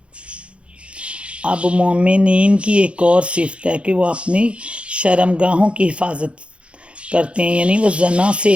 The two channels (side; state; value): left; late; 0.060 ms